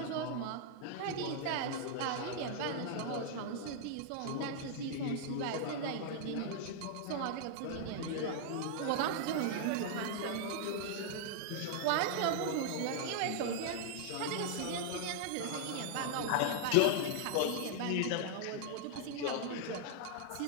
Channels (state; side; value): different; both; correlation -0.01